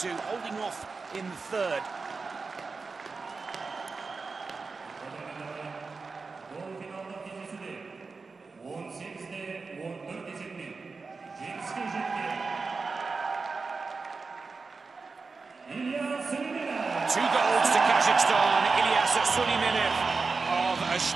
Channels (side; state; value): left; quieter; 4.4 dB